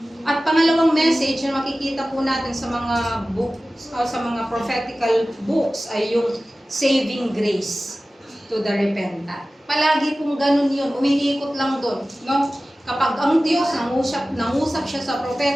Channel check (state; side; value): normal; both; correlation 0.96